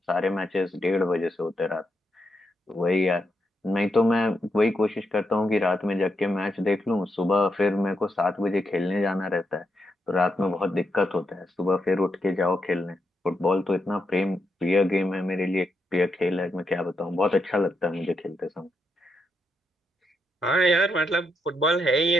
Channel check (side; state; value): both; normal; correlation 0.82